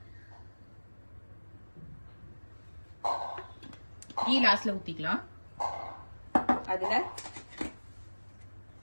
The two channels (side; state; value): both; inverted; correlation -1.00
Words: கீ லாஸ்ட்ல ஊத்திக்கலாம். அதுல